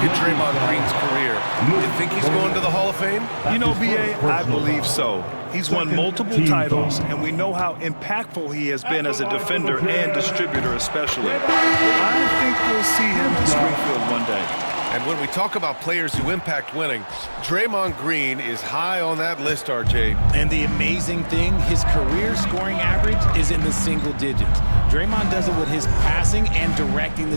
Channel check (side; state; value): both; inverted; correlation -1.00